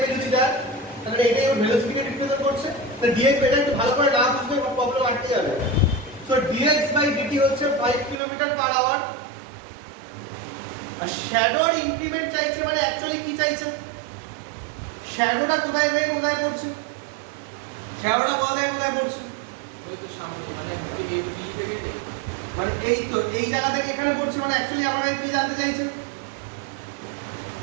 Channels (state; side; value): drops out; left; at 8.2 s